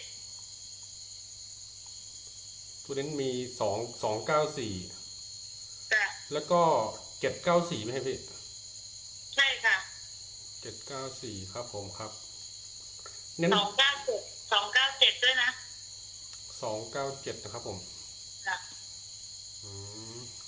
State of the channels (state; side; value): identical; both; correlation 1.00